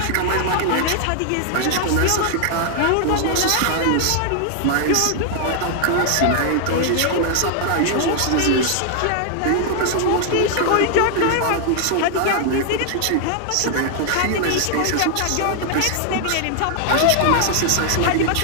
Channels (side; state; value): both; different; correlation 0.00